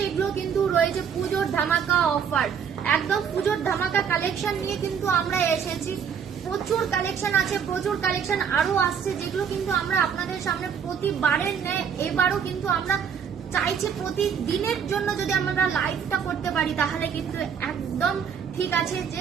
এগুলো কিন্তু রয়েছে পুজোর ধামাকা অফার, একদম পুজোর ধামাকা কালেকশন নিয়ে কিন্তু আমরা এসেছি। প্রচুর কালেকশন আছে, প্রচুর কালেকশন আরো আসছে, যেগুলো কিন্তু আমরা আপনাদের সামনে প্রতিবারের ন্যায় এবারও কিন্তু আমরা চাইছি প্রতিদিনের জন্য যদি আমরা লাইভটা করতে পারি তাহলে কিন্তু একদম ঠিক আছে যে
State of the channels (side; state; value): left; quieter; 7.3 dB